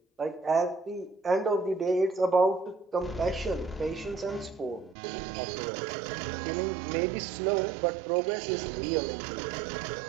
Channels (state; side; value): drops out; left; at 5.0 s